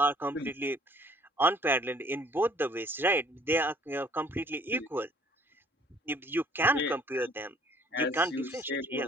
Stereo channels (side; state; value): both; normal; correlation 0.58